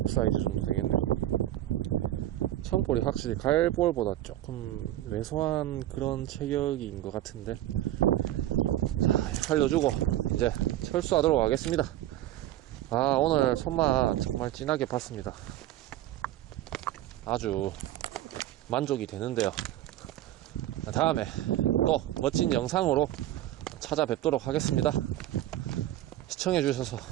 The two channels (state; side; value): quieter; left; 13.7 dB